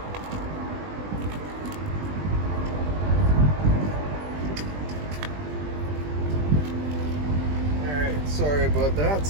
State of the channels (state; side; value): late; left; 20 ms